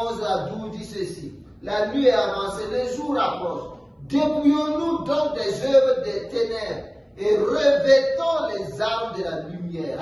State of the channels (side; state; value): both; identical; correlation 1.00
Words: à 12 dit ceci: la nuit est avancée, le jour approche. Dépouillons-nous donc des œuvres des ténèbres et revêtons les armes de la lumière.